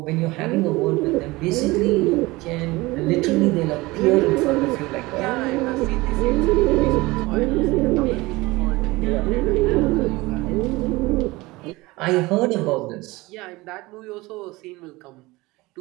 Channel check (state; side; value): quieter; left; 21.4 dB